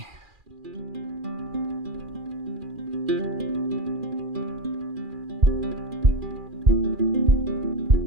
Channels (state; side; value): late; left; 2.4 ms